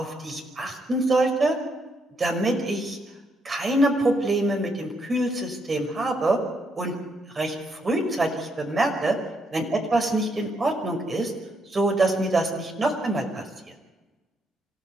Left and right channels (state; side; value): normal; both; correlation 0.76